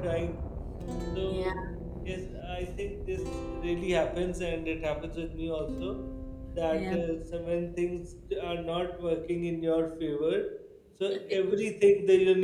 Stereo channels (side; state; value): both; identical; correlation 1.00